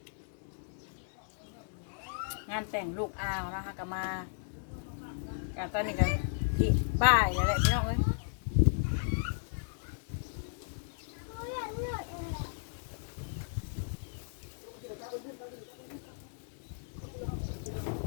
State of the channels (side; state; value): right; silent; digital silence